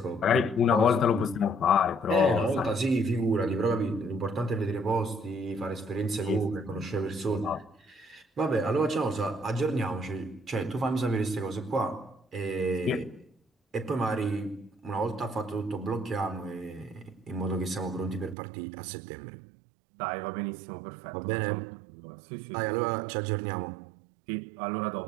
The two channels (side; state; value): left; drops out; at 18.4 s